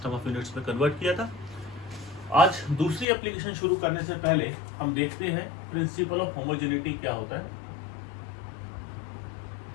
ऑफ यूनिट्स में कन्वर्ट किया था। आज दूसरी एप्लीकेशन शुरू करने से पहले हम देखते हैं प्रिंसिपल ऑफ होमोजेनिटी क्या होता है।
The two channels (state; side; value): drops out; right; at 3.1 s